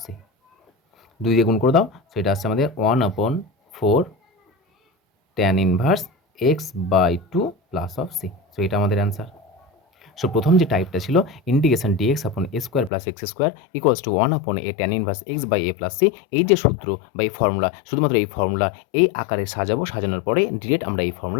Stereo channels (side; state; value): right; drops out; at 12.9 s